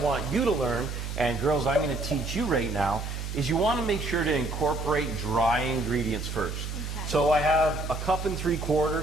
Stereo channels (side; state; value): right; noise; hum, 6 dB below the sound